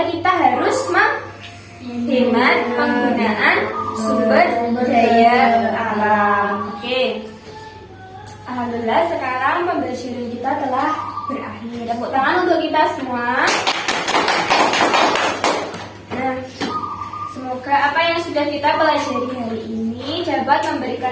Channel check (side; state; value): both; identical; correlation 1.00